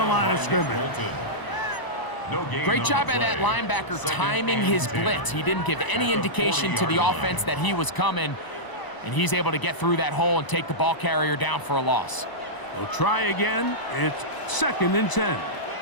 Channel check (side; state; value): right; late; 1.0 ms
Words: line of scrimmage. Great job by that linebacker timing his blitz. He didn't give any indication to the offense that he was coming, and he's able to get through that hole and take the ball carrier down for a loss. They'll try again. It's 2nd and 10.